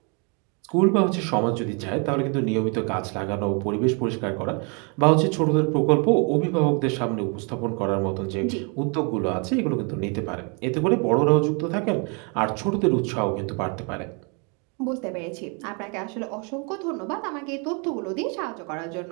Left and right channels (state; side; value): quieter; left; 34.9 dB